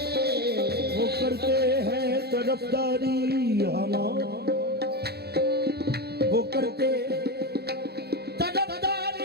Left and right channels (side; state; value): left; late; 0.47 ms